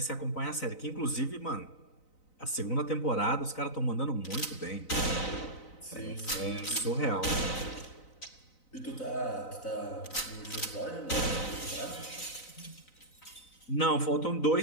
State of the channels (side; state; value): right; late; 3.9 ms